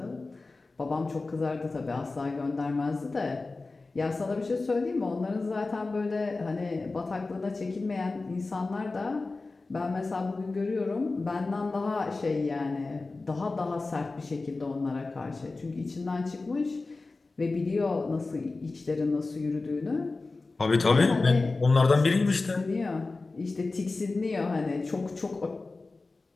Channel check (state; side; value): quieter; right; 3.6 dB